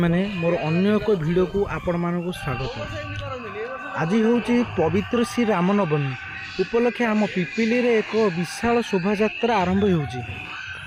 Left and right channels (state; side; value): identical; both; correlation 1.00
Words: मोर अन्य एक वीडियो को आपण मानक स्वागत। आज हूँ पवित्र श्री रामनवमी उपलक्षे आम पिपिली रे एक विशाल शोभा यात्रा आरंभ होउची।